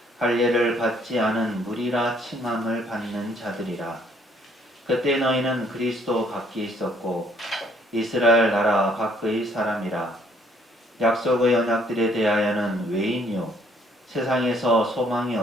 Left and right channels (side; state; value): both; normal; correlation 0.65